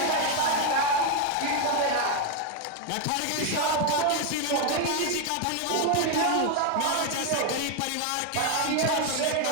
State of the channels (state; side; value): different; both; correlation 0.01